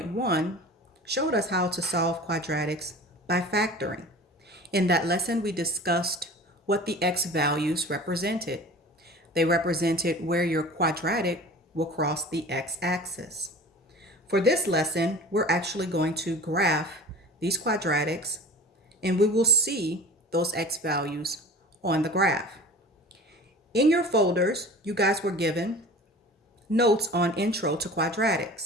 showed us how to solve quadratics by factoring. In that lesson, we discussed what the x values represented. They represented where your quadratic will cross the x-axis. For this lesson, we're actually going to graph these quadratics, and we will see those x values on the graph. In your folders, you guys were given notes on Intro to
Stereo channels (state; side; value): normal; both; correlation 0.40